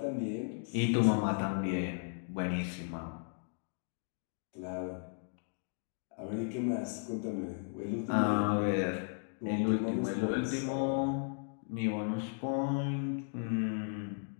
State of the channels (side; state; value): right; silent; digital silence